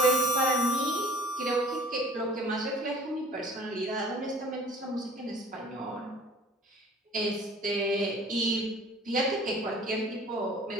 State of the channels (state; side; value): normal; both; correlation 0.48